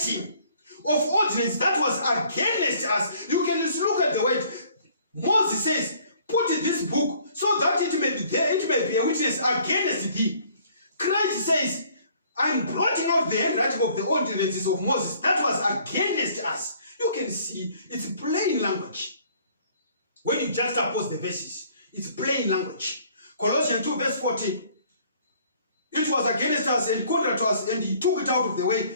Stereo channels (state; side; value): inverted; both; correlation -0.58